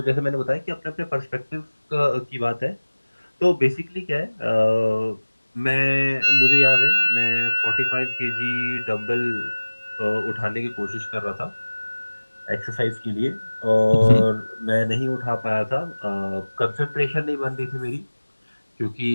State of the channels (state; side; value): inverted; both; correlation -1.00